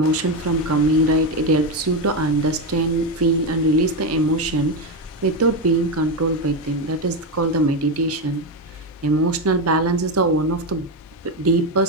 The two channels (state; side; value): normal; both; correlation 0.11